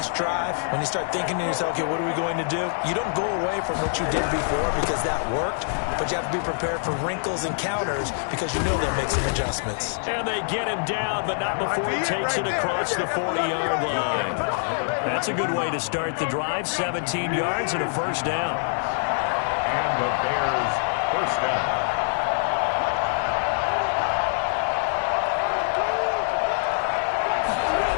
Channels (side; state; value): right; silent; digital silence